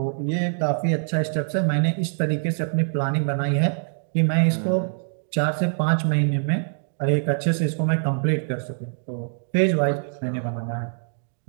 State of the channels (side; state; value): left; silent; digital silence